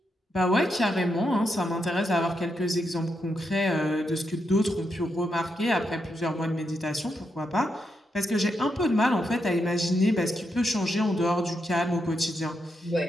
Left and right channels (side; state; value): both; normal; correlation 0.83